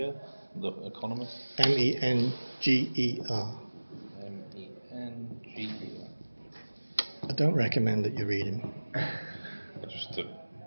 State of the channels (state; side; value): inverted; both; correlation -1.00